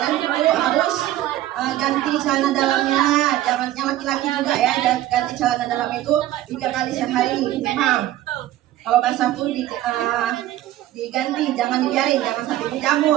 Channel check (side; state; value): left; quieter; 14.1 dB